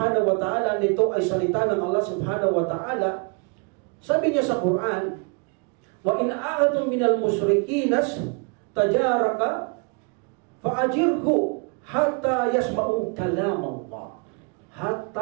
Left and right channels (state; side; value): quieter; left; 34.2 dB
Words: wa ta'ala, nito ay salita ng Allah subhanahu wa ta'ala, sabi niya sa Quran, wa in a'atum minal musrikinas tajaraka fa'ajirhu hatta yasma'u kalam Allah.